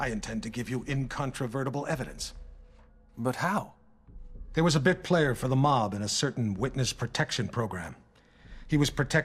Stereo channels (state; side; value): identical; both; correlation 1.00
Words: intend to give you incontrovertible evidence. But how? There was a bit player for the mob in a certain witness protection program. He was